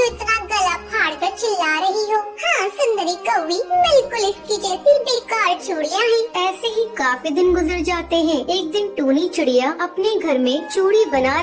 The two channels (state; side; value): identical; both; correlation 1.00